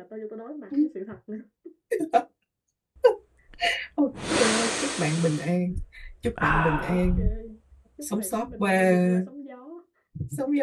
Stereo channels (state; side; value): identical; both; correlation 1.00